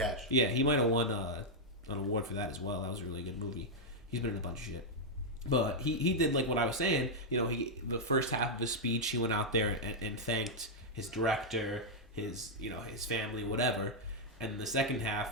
Yeah, he might have won an award for that as well. That was a really good movie. He's been in a bunch of shit. But he did like what I was saying. You know, the first half of his speech, he went out there and thanked his director, his family, whatever. And the second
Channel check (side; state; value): both; normal; correlation -0.03